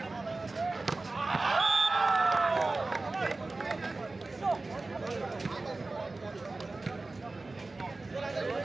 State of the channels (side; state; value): left; quieter; 3.3 dB